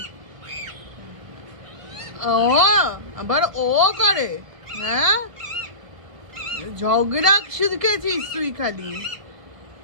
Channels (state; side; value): late; left; 1.5 ms